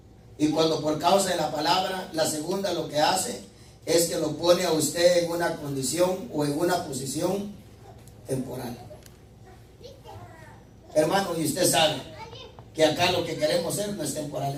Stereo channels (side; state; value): both; identical; correlation 1.00